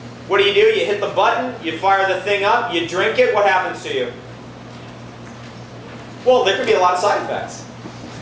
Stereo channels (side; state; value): both; identical; correlation 1.00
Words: What do? You hit the button, you fire the thing up, you drink it, what happens to you? Well, there could be a lot of side effects.